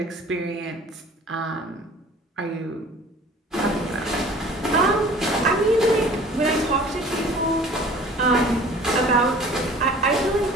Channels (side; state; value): both; normal; correlation 0.47